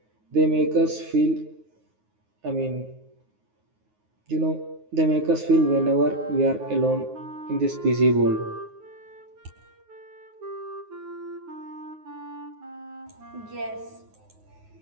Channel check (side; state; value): left; late; 9.5 ms